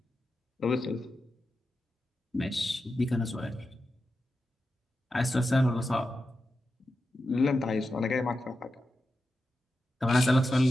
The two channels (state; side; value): normal; both; correlation 0.90